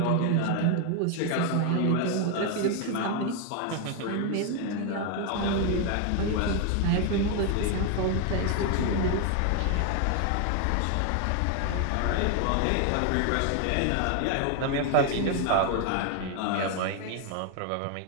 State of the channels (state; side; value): different; both; correlation 0.01